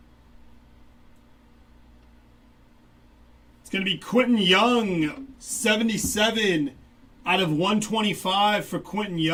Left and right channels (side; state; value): both; identical; correlation 1.00